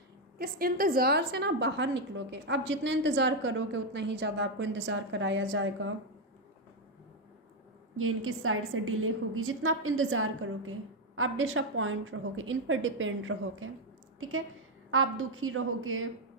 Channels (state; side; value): normal; both; correlation 0.04